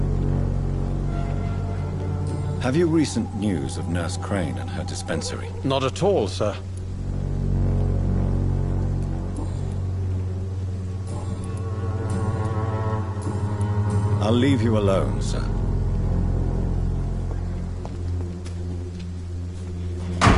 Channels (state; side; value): identical; both; correlation 1.00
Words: Have you recent news of Nurse Crane and her dispensary? Not at all, sir. I'll leave you alone, sir.